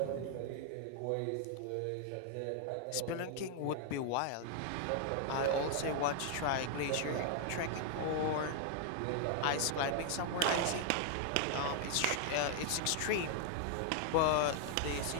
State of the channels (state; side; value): different; both; correlation 0.00